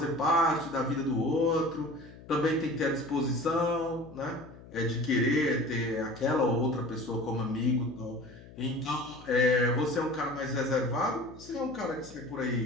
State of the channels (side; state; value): left; noise; hum, 19 dB below the sound